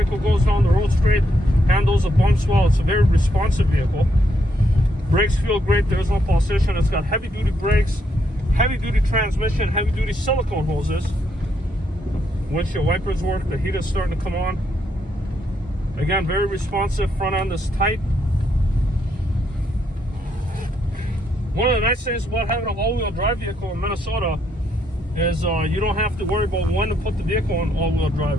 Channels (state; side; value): normal; both; correlation 0.76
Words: goes down the road straight, handles the bumps well. It's a very responsive vehicle. Brakes feel great, there's no pulsation. It's got heavy-duty brakes, heavy-duty transmission, heavy-duty silicone hoses. Windshield wipers work, the heat is starting to come on. Again, very responsive, front end is tight. One of the nice things about having an all-wheel drive vehicle in Minnesota is you don't have to worry about when to put the vehicle in all-wheel